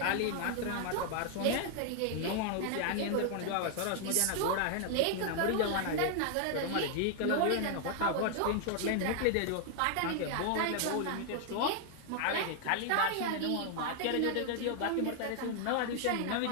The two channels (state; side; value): different; both; correlation 0.00